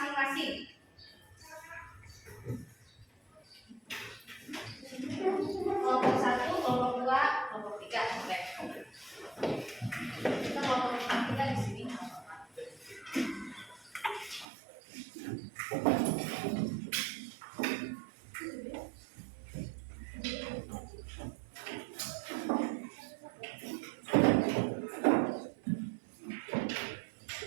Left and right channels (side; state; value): left; drops out; at 14.5 s